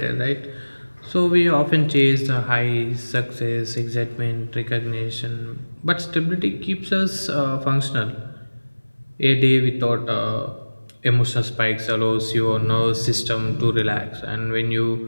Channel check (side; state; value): both; inverted; correlation -1.00